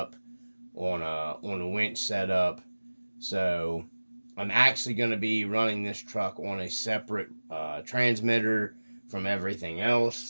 on a winch setup. So I'm actually going to be running this truck on a separate transmitter from everything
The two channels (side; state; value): both; inverted; correlation -1.00